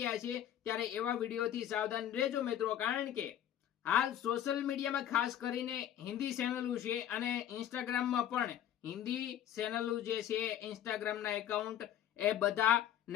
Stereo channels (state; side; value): quieter; right; 10.9 dB